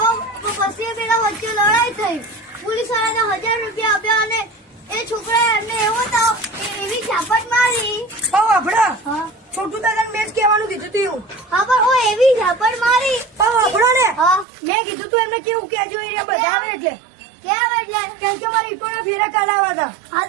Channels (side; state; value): left; drops out; at 14.5 s